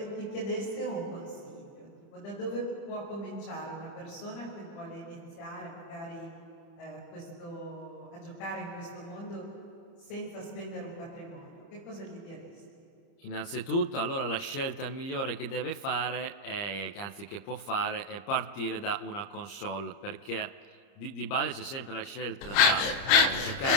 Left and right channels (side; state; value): right; late; 30 ms